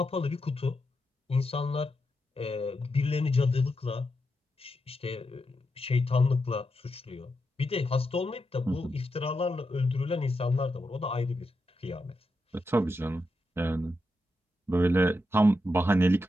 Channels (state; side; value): normal; both; correlation 0.85